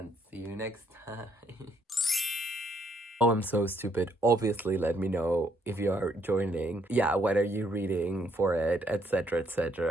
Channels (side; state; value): both; normal; correlation 0.70